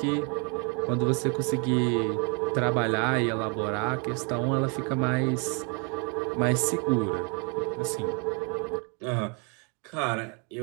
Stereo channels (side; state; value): left; quieter; 35.1 dB